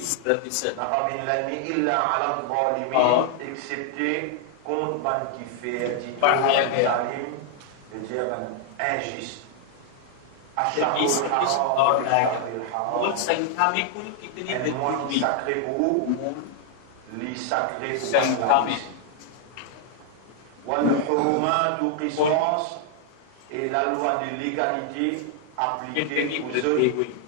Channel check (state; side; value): different; both; correlation 0.00